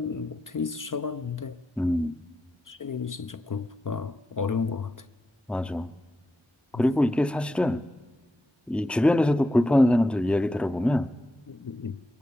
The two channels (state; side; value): normal; both; correlation 0.88